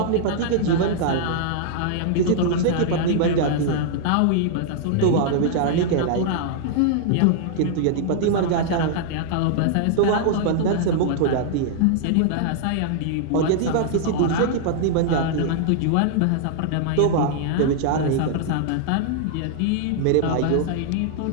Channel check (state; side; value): different; both; correlation -0.01